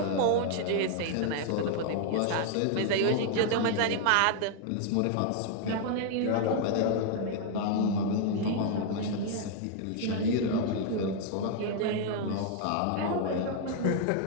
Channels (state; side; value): different; both; correlation 0.00